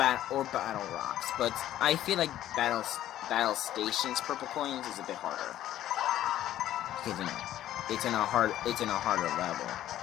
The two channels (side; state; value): right; quieter; 12.7 dB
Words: Rocks. But I feel like Battle Station's purple coins is a bit harder because it's in a harder level,